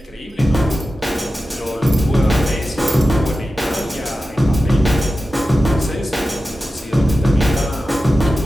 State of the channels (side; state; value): both; normal; correlation 0.93